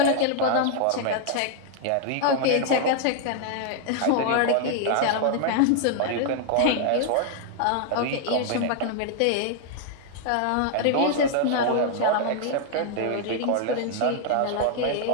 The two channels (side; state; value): both; different; correlation 0.00